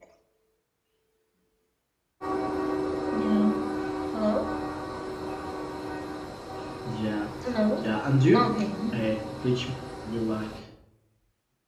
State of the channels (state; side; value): identical; both; correlation 1.00